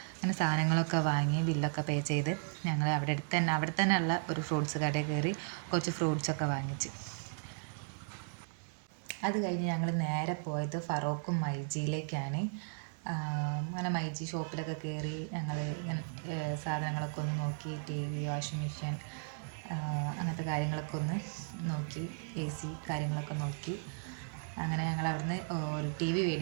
അങ്ങനെ സാധനങ്ങളൊക്കെ വാങ്ങി ബില്ലൊക്കെ പേ ചെയ്ത് ഞങ്ങൾ അവിടെ തന്നെ ഉള്ള ഒരു ഫ്രൂട്ട്സ് കടയിൽ കയറി കുറച്ച് ഫ്രൂട്ട്സൊക്കെ വാങ്ങിച്ച്. അത് കഴിഞ്ഞ് ഞങ്ങൾ നേരെ പോയത് ഫറോക്കും മൈജിയിലേക്കാണ്. അങ്ങനെ മൈജി ഷോപ്പിലൊക്കെ കയറി ഞങ്ങൾ സാധനങ്ങളൊക്കെ ഒന്ന് നോക്കി. TV, വാഷിംഗ് മെഷീൻ, അങ്ങനത്തെ കാര്യങ്ങളൊക്കെ ഒന്ന് നോക്കി. AC കാര്യങ്ങളൊക്കെ നോക്കി. അങ്ങനെ ഞങ്ങൾ അവിടുന്ന് ഒരു TV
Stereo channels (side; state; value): left; silent; 54 dB below the other